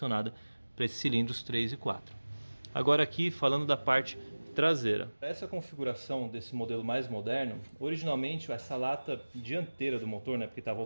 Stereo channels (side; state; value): both; inverted; correlation -1.00